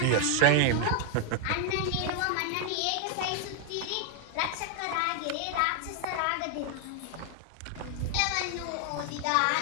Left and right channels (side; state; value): both; different; correlation 0.00